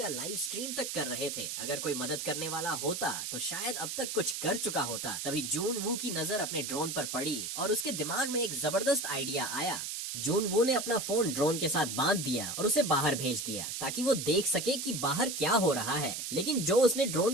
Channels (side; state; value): right; noise; hiss, 4 dB below the sound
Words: लाइव स्ट्रीम तक कर रहे थे। अगर कोई मदद करने वाला होता तो शायद अब तक कुछ कर चुका होता। तभी जून वू की नजर अपने ड्रोन पर पड़ी और उसके दिमाग में एक जबरदस्त आइडिया आया। जून वू ने अपना फोन ड्रोन के साथ बांध दिया और उसे बाहर भेज दिया ताकि वो देख सके कि बाहर क्या हो रहा है। लेकिन जो उसने